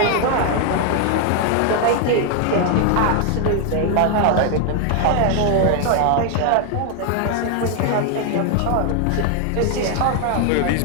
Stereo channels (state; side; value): different; both; correlation 0.01